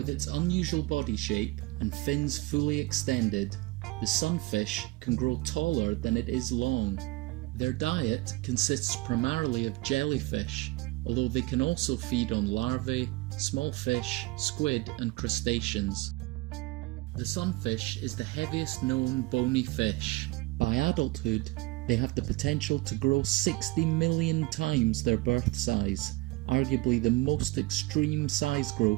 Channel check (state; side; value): quieter; left; 21.6 dB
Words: its unusual body shape and fins fully extended, the sunfish can grow taller than it is long. Their diet consists primarily of jellyfish, although they can also feed on larvae, small fish, squid and crustaceans. The sunfish is the heaviest known bony fish. By adulthood, they have the potential to grow 60 million times their birth size, arguably the most extreme size